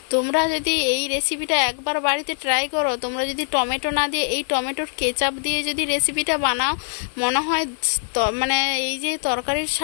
তোমরা যদি এই রেসিপিটা একবার বাড়িতে ট্রাই করো, তোমরা যদি টমেটো না দিয়ে এই টমেটোর কেচাপ দিয়ে যদি রেসিপিটা বানাও, মনে হয় এই যে তরকারির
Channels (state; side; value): silent; right; digital silence